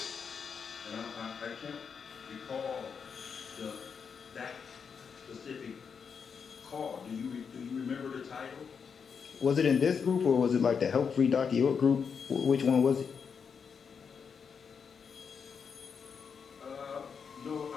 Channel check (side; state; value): right; quieter; 6.3 dB